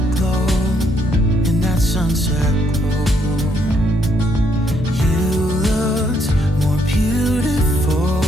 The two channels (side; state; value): both; normal; correlation 0.73